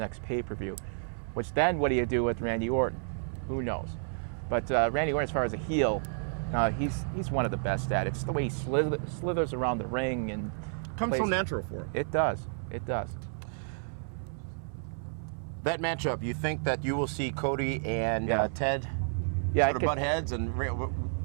pay-per-view, which then what do you do with Randy Orton? Who knows? But Randy Orton, as far as a heel, he's one of the best at it. It's the way he slithers around the ring and Comes so natural for him. It does. It does. That matchup, you think that you will see Cody and Ted sort of butt heads and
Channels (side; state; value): left; silent; 57 dB below the other